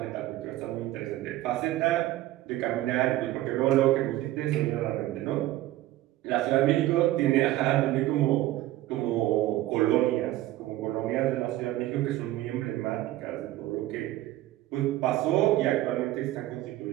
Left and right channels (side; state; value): left; quieter; 15.6 dB